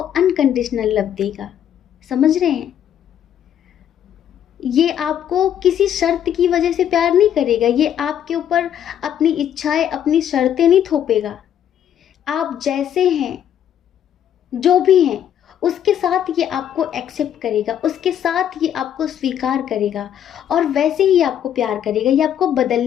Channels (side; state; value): right; quieter; 9.9 dB